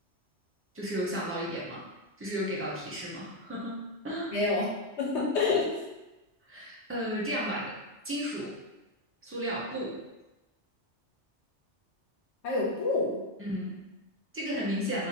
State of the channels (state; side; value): normal; both; correlation 0.05